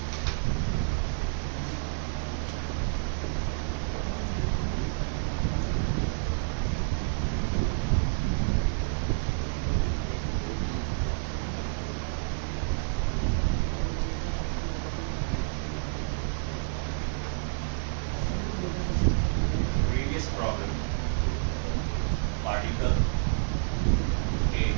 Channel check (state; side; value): silent; left; digital silence